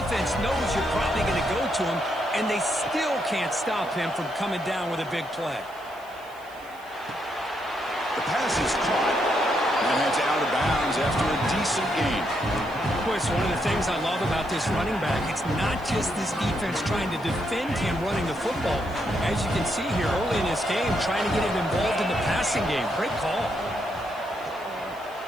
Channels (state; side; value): noise; right; hiss, 25 dB below the sound